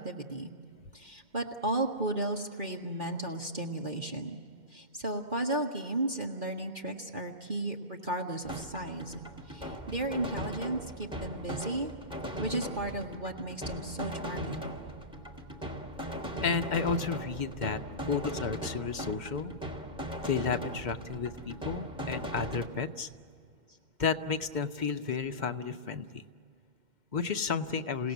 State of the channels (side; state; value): left; late; 2.1 ms